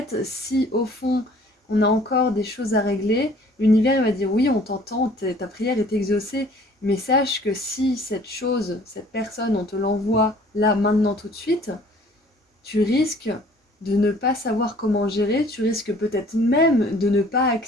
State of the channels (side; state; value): both; normal; correlation 0.54